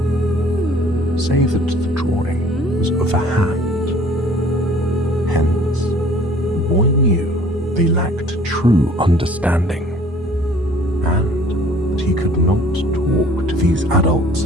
say that the drawing was of a hat. Hence, the boy knew they lacked true understanding, and that he could not talk to these adults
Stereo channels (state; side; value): normal; both; correlation 0.53